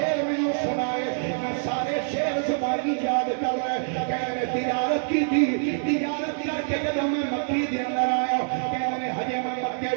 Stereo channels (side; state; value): left; silent; digital silence